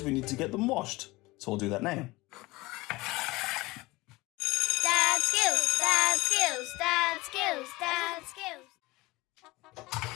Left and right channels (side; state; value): right; quieter; 21.3 dB